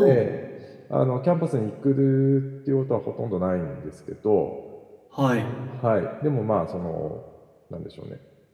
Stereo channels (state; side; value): identical; both; correlation 1.00